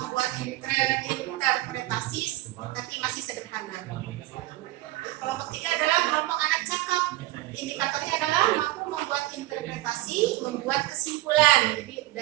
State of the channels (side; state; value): left; quieter; 17.1 dB